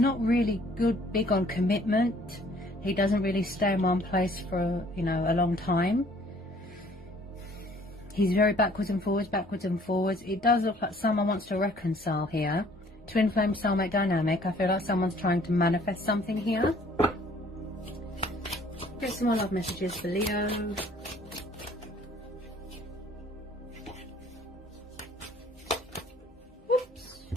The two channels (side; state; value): both; normal; correlation 0.57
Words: really big on commitment. He doesn't really stay in one place for, you know, a long time. He's very backwards and forwards, backwards and forwards. It does look like someone wants to reconcile here. Twin flame soulmate dynamic. I feel like someone's trying to manifest something here. Get some more love messages for Leo. Whoops.